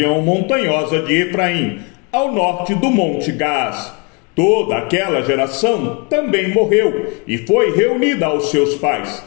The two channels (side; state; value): right; quieter; 31.9 dB